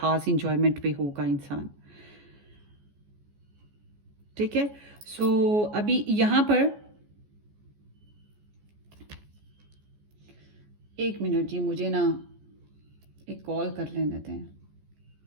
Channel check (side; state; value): left; late; 14 ms